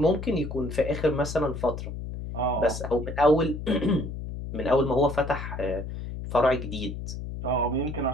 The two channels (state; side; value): noise; left; hum, 7 dB below the sound